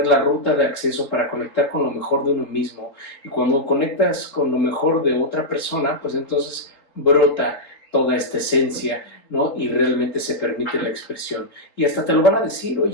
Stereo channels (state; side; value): late; right; 4.0 ms